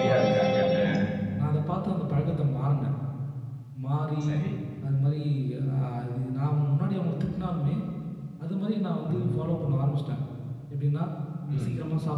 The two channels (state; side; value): identical; both; correlation 1.00